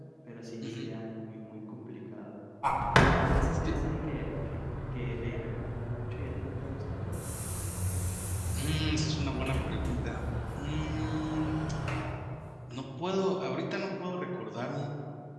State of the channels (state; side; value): identical; both; correlation 1.00